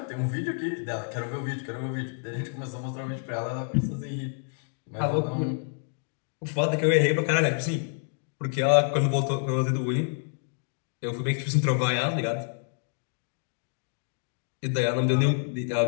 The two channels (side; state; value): right; silent; 59 dB below the other